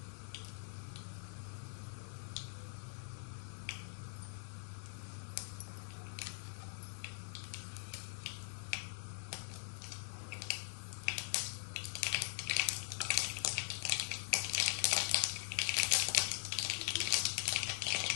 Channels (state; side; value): silent; right; digital silence